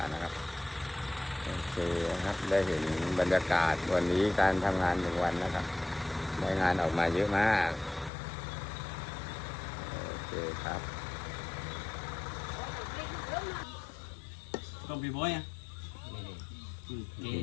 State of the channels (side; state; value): right; drops out; at 8.1 s